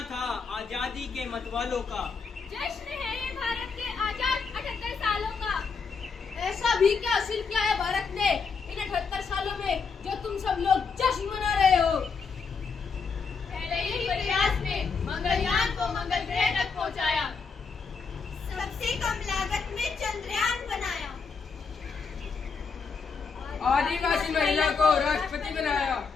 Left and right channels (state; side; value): quieter; right; 5.2 dB